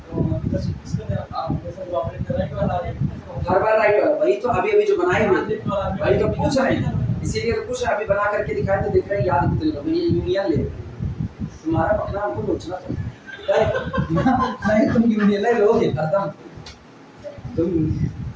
किसका देना आप जैसे ऑपरेट राइट वाला आ जाए, हर बार राइट वाला, वही तो अभी जो बनाए हुए, वही तो पूछ रहे हैं, इसीलिए तो पूछ रहे हैं। अभी बना करके दिखाए तो दिख रहे हैं, याद कितने लोग ये यूनियन ले, तुम्हारा पकड़ा हमको सोचना था नहीं, तुम यूनियन ले लोगे एकदम, तुम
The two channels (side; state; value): both; identical; correlation 1.00